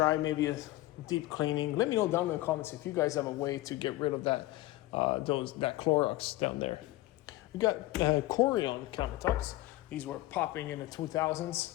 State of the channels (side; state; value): right; quieter; 17.5 dB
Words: maybe a deep cleaning. Let me know down in the comments if you guys have a way to get rid of that that Clorox down there. We got Corian countertops. These were popping in the